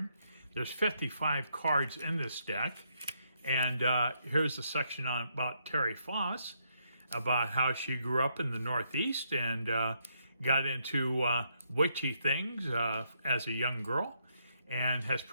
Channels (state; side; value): inverted; both; correlation -0.77